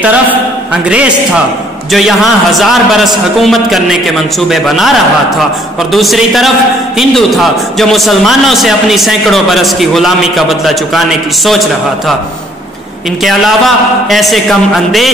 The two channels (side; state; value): both; normal; correlation 0.62